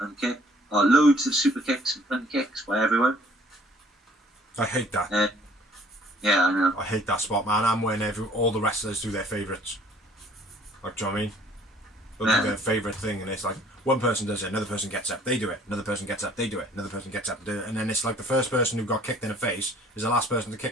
kick. Loads of super kicks and fun kicks by everyone. I hate that. Yeah, I know. I hate that spot, man. I'm when all the wrestlers do their favourites. Like, do you know what I mean? They'll do their favourite thing, and it's like, one person does it, another person gets up, they do it, another person gets up, they do it, another person gets up, do it, and then it's like the first person who got kicked in the face is the last person to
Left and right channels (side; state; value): both; normal; correlation 0.57